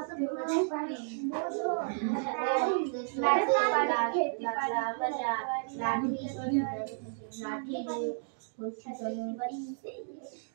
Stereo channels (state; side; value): silent; left; digital silence